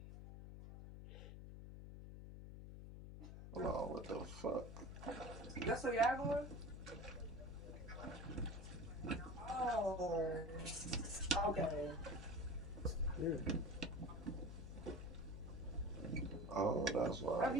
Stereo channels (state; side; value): noise; left; hum, 10 dB below the sound